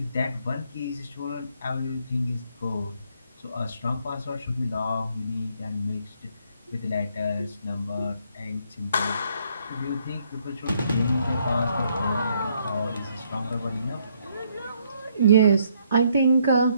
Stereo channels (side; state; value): both; inverted; correlation -0.70